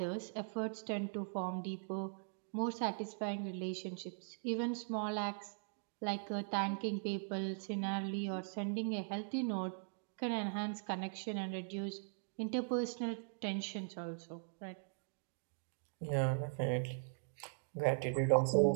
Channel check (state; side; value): silent; left; digital silence